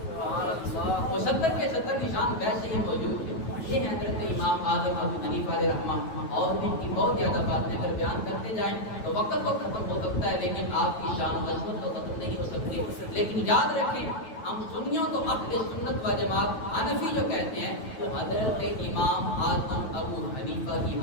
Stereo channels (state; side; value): late; right; 9.2 ms